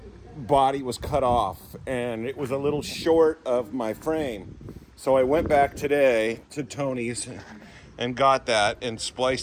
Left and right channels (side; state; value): both; identical; correlation 1.00